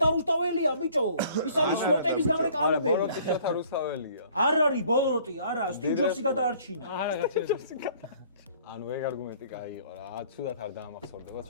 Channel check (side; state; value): both; inverted; correlation -0.56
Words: რუსთაველია ბიჭო. ის არის სლოტების გამრეკამებელი. ბოროტი შოთა რუსთაველია. არ არის ბოლოტი, არა, სტივ ჯობსი გადაარჩინა. არა, გაჩერდეს. ანუ ეგ არგუმენტი კაი იყო რა. ცუდად არ დაამახსოვრდება